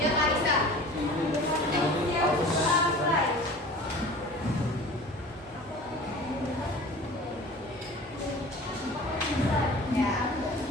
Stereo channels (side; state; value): both; normal; correlation 0.41